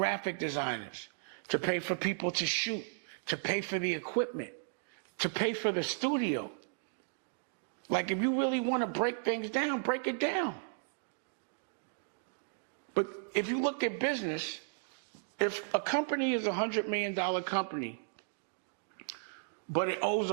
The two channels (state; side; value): silent; left; digital silence